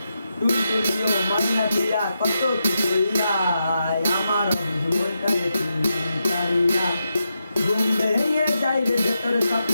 টুনটুনিও মাইনাটিয়া কত কি কইরা আমার মনটারে তুমি তারিয়া ঘুম ভেঙে যাই রে ভেতর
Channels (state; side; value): inverted; both; correlation -0.86